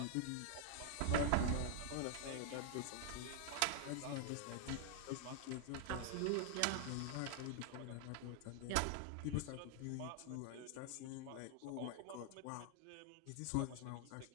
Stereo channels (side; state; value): both; different; correlation 0.00